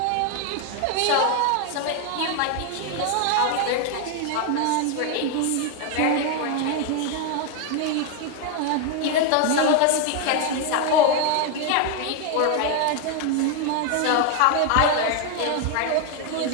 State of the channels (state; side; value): different; both; correlation 0.01